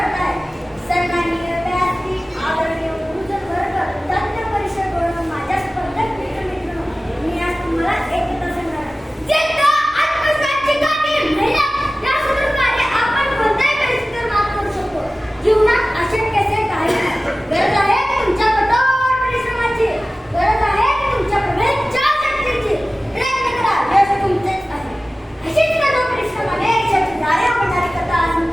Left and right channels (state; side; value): normal; both; correlation 0.97